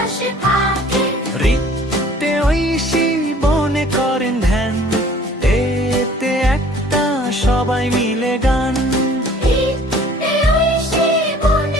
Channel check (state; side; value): normal; both; correlation 0.52